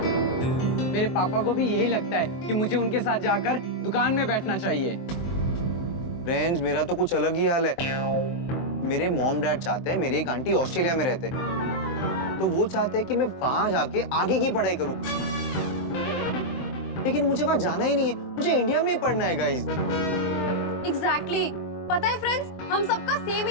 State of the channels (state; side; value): late; right; 23 ms